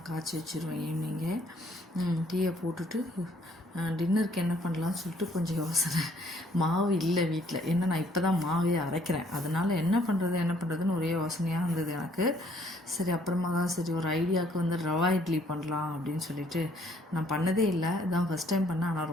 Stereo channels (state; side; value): normal; both; correlation 0.64